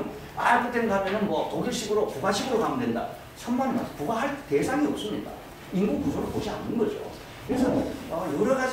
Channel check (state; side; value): identical; both; correlation 1.00